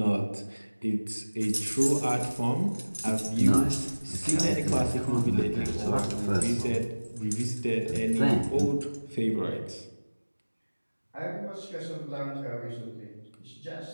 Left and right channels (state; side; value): inverted; both; correlation -1.00